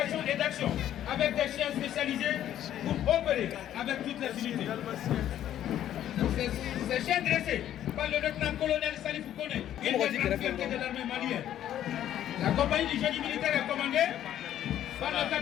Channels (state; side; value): quieter; right; 11.4 dB